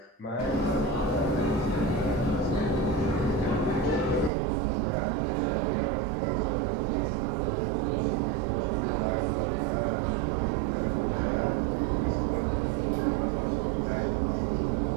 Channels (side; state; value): left; drops out; at 4.3 s